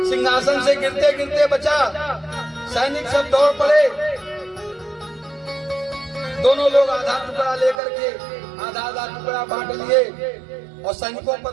सिंहासन से गिरते गिरते बचा। सैनिक सब दौड़ पड़े। दोनों लोग आधा टुकड़ा लेकर के आधा आधा टुकड़ा बांट लिए और सैनिकों पर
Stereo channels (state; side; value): drops out; left; at 7.8 s